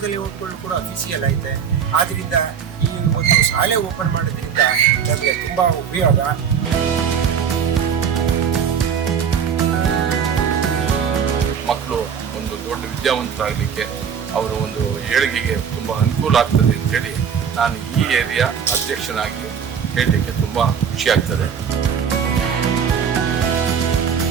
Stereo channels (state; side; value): quieter; left; 7.4 dB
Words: ಲೇಔಟ್ಗಳು ಕೂಡ ಅಫಿಸಿಯಲ್ ಐತೆ. ಆದ್ದರಿಂದ ಈ ಒಂದು ಶಾಲೆ ಓಪನ್ ಮಾಡೋದ್ರಿಂದ ನಮಗೆ ತುಂಬ ಉಪಯೋಗ. ಮಕ್ಕಳು ಒಂದು ದೊಡ್ಡ ವಿದ್ಯಾವಂತರಾಗಲಿಕ್ಕೆ ಅವರ ಒಂದು ಏಳಿಗೆಗೆ ತುಂಬ ಅನುಕೂಲ ಆಗ್ತದೆ ಅಂತೇಳಿ ನಾನು ಈ ಏರಿಯಾ ಅಧ್ಯಕ್ಷನಾಗಿ ಹೇಳಲಿಕ್ಕೆ ತುಂಬ ಖುಷಿ ಆಗ್ತದೆ.